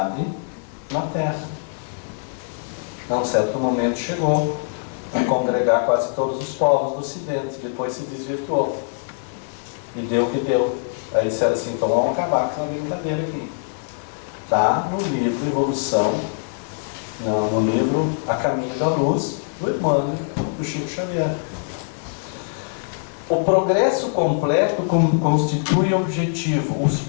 na Terra. A um certo momento chegou a congregar quase todos os povos do Ocidente, depois se desvirtuou. E deu o que deu. Aí disseram assim, então vamos acabar com essa brincadeira aqui. Está no livro Evolução, no livro A Caminho da Luz, do Emmanuel, do Chico Xavier. O progresso completo constitui objetivo. Os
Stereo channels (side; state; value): right; silent; 64 dB below the other